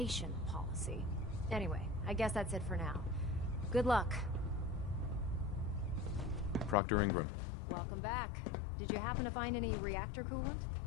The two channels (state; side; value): drops out; right; at 6.8 s